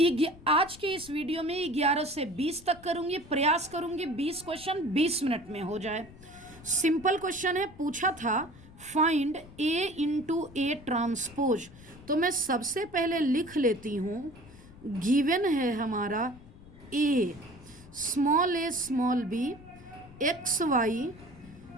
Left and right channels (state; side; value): noise; left; rumble, 20 dB below the sound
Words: आज के इस वीडियो में 11 से 20 तक करूंगी, प्रयास करूंगी 20 क्वेश्चन 20 मिनट में हो जाए। सिंपल क्वेश्चन है, पूछा था find A into A transpose. तो मैं सबसे पहले लिख लेती हूँ, गिवन है हमारा a small b x Y